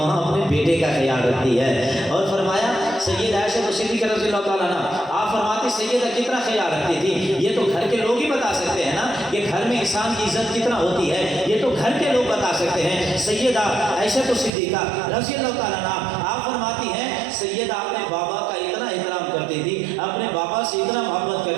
اپنے بیٹے کا خیال رکھتی ہے۔ اور فرمایا سید عائشہ صدیقہ رضی اللہ تعالیٰ عنہ، آپ فرماتے سیدہ کتنا خیال رکھتی تھی، یہ تو گھر کے لوگ ہی بتا سکتے ہیں نا کہ گھر میں انسان کی عزت کتنا ہوتی ہے، یہ تو گھر کے لوگ بتا سکتے ہیں۔ سیدہ عائشہ صدیقہ رضی اللہ تعالیٰ عنہ آپ فرماتی ہیں سیدہ اپنے بابا کا اتنا احترام کرتی تھی، اپنے بابا سے اتنا محبت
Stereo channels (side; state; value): left; drops out; at 14.5 s